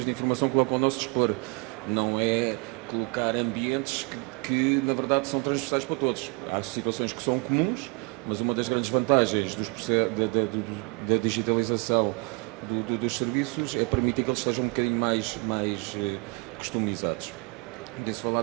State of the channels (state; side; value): quieter; left; 30.7 dB